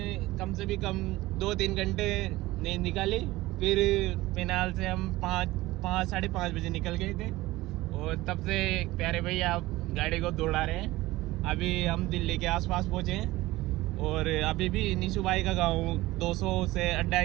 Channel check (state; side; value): quieter; left; 18.5 dB